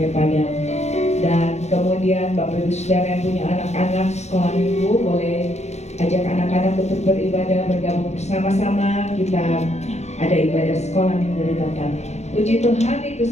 Dan kemudian Bapak Ibu Saudara yang punya anak-anak sekolah minggu boleh ajak anak-anak untuk beribadah bergabung bersama-sama. Kita ada ibadah sekolah minggu di tempat. Puji Tuhan, itu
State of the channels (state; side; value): late; right; 0.32 ms